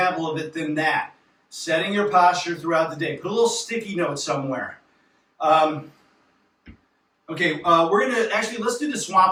of it than that. Setting your posture throughout the day. Put a little sticky note somewhere. Okay, we're going to, actually, let's do the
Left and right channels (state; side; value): identical; both; correlation 1.00